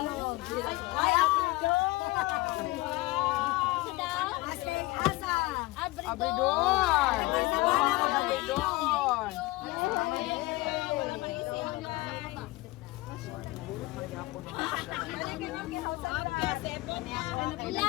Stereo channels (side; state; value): right; quieter; 21.0 dB